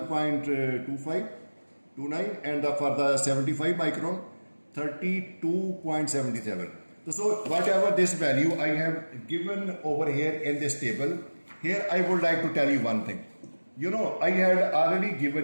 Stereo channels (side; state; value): both; inverted; correlation -1.00